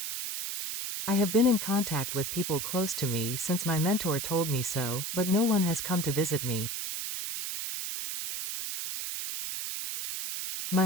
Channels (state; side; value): noise; right; hiss, 4 dB below the sound